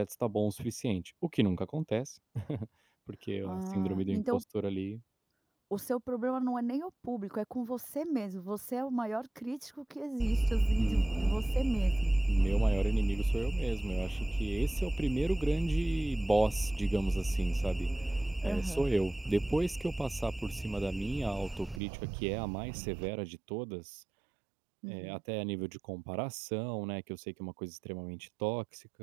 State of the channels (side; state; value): left; drops out; at 21.8 s